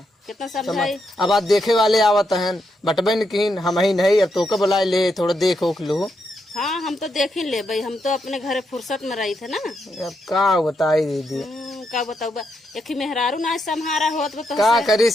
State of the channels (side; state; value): both; normal; correlation 0.81